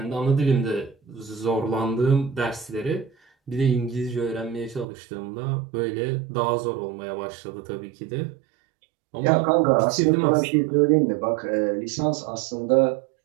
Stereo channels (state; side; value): drops out; left; at 4.9 s